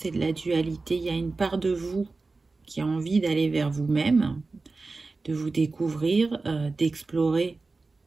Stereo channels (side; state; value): left; quieter; 3.8 dB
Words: de la dualité. Il y a une part de vous qui a envie d'aller vers vous-même, de vous découvrir, d'explorer